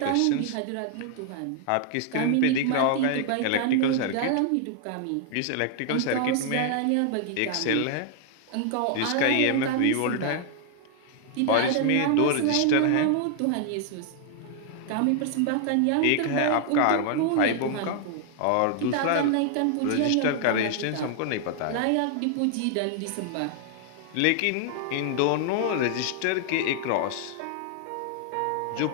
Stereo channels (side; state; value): both; different; correlation 0.00